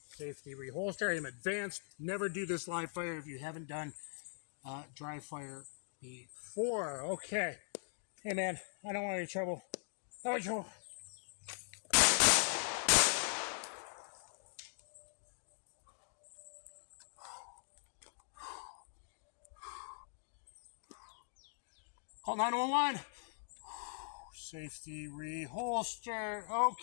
safety reholster. I'm advanced. Never do this live fire if you haven't done dry fire before. Okay. Hey, man, I don't want any trouble. Oh, trouble. Call 911. Safety reholster.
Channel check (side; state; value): right; silent; digital silence